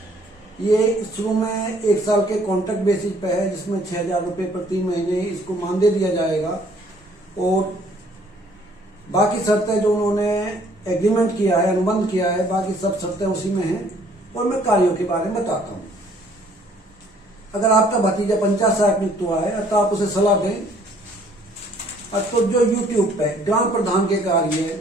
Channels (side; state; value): both; normal; correlation 0.60